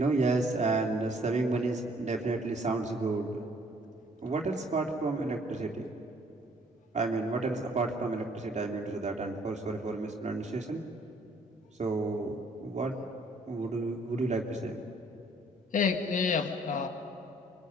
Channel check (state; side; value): normal; both; correlation 0.61